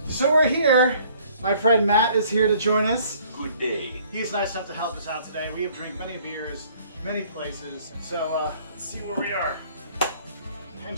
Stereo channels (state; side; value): inverted; both; correlation -0.58